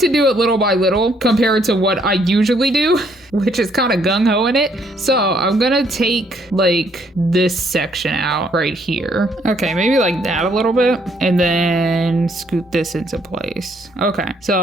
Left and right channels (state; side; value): normal; both; correlation 0.68